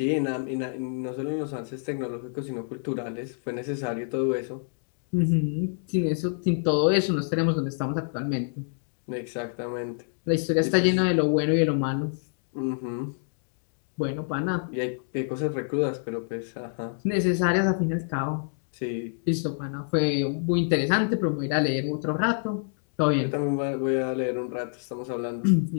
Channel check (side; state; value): right; silent; digital silence